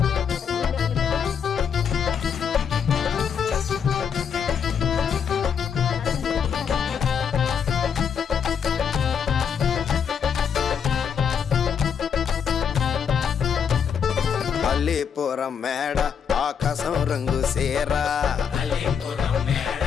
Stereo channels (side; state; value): right; quieter; 7.3 dB